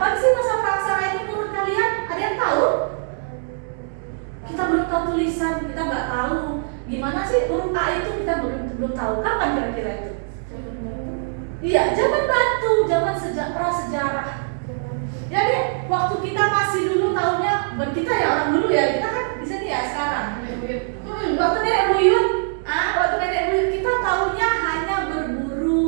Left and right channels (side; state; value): left; silent; 64 dB below the other